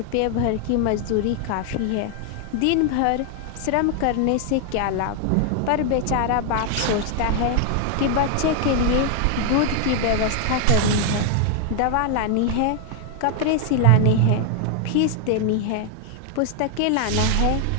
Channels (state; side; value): different; both; correlation 0.00